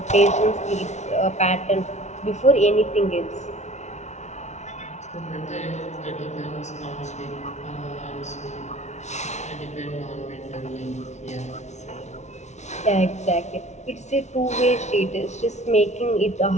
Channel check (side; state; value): right; late; 0.33 ms